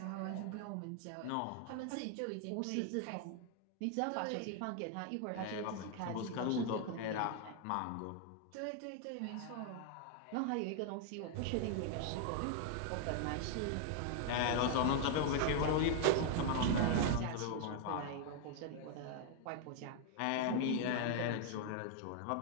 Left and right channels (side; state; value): both; different; correlation 0.00